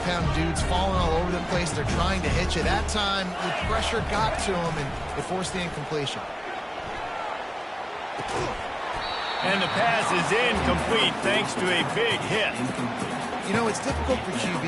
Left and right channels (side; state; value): both; identical; correlation 1.00